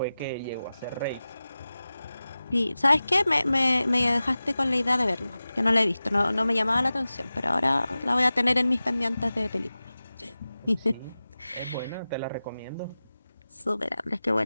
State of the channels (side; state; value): both; inverted; correlation -0.96